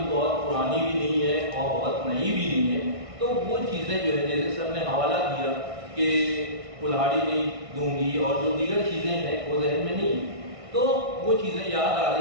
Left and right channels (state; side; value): late; left; 1.6 ms